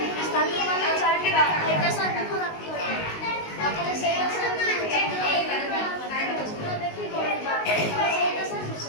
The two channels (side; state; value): right; late; 19 ms